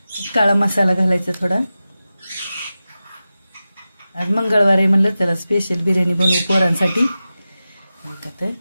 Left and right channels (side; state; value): both; inverted; correlation -0.94